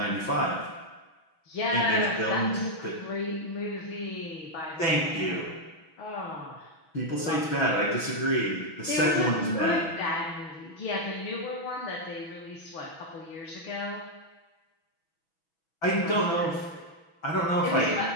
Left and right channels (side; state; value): right; late; 6.1 ms